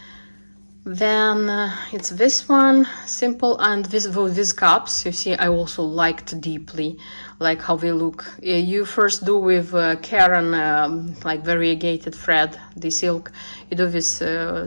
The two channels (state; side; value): inverted; both; correlation -1.00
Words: Then it's this one, simple, and these cups, you see, I also liked deeply, like how they look. You first do with Karen, like variegated thread, the silk, you do these